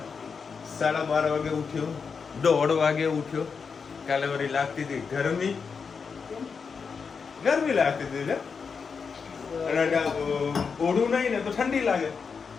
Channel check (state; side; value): quieter; right; 5.6 dB